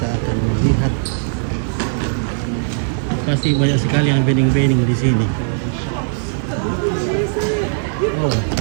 akan melihat, pasti banyak sekali yang bening-bening di sini. Oh.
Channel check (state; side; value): silent; left; 64 dB below the other